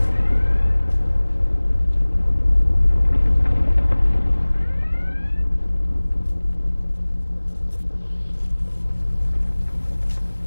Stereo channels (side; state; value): both; inverted; correlation -1.00